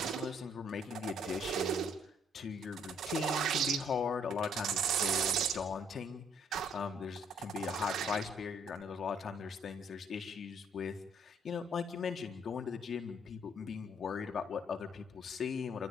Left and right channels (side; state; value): both; normal; correlation 0.65